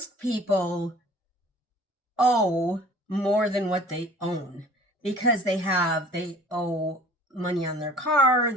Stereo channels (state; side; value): normal; both; correlation 0.47